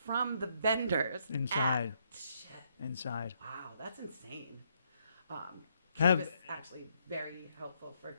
from the vendors inside. Inside. Wow, that's insane. Cannabis is actually very helpful for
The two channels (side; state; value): both; inverted; correlation -0.73